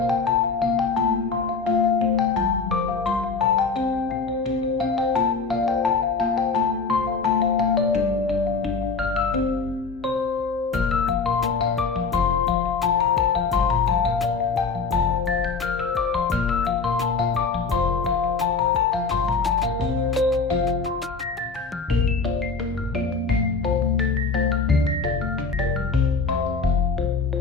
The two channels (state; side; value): quieter; right; 4.6 dB